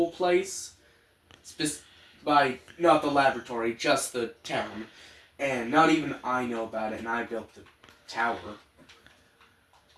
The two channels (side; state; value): both; identical; correlation 1.00